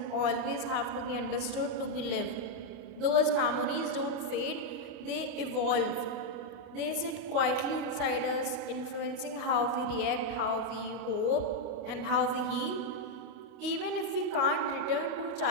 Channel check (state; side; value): late; left; 28 ms